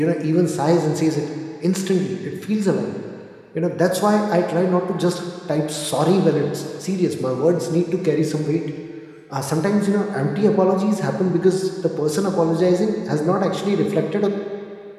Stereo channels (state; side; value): identical; both; correlation 1.00